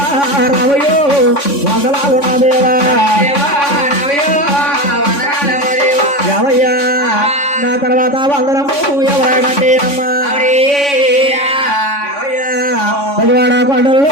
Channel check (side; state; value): right; late; 3.5 ms